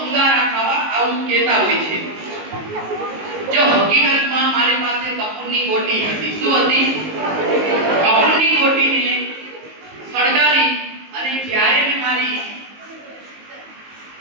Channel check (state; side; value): late; left; 19 ms